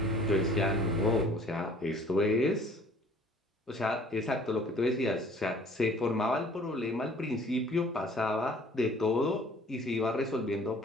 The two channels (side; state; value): both; normal; correlation 0.54